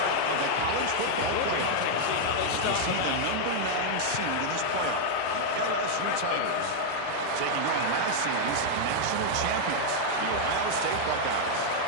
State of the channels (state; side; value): different; both; correlation 0.00